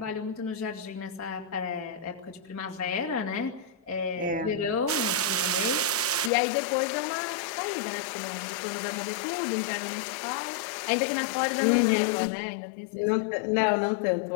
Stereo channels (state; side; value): drops out; right; at 6.3 s